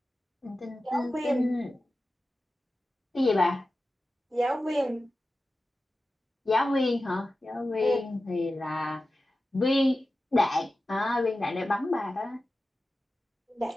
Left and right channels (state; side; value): normal; both; correlation 0.94